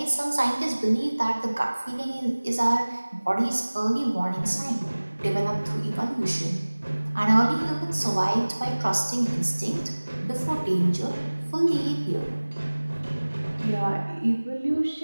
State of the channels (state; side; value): inverted; both; correlation -1.00